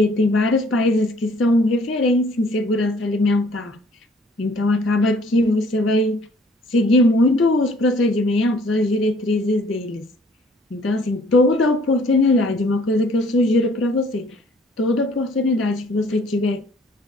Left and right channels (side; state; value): both; normal; correlation 0.58